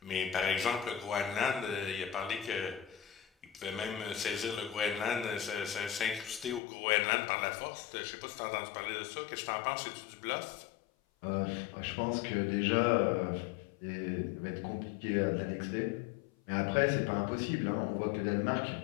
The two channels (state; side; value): drops out; right; at 6.6 s